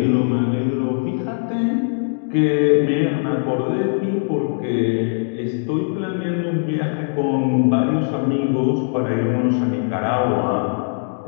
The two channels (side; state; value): right; silent; digital silence